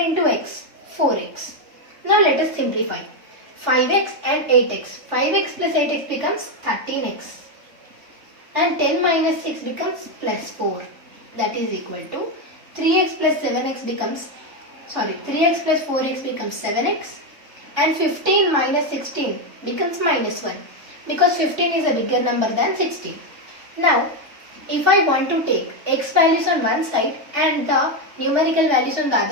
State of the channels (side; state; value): left; late; 3.4 ms